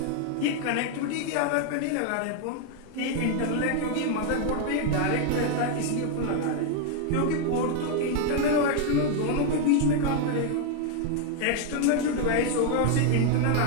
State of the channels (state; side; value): different; both; correlation 0.01